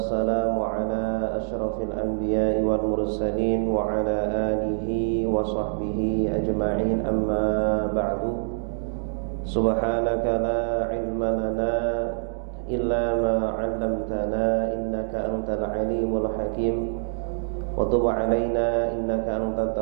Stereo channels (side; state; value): left; silent; digital silence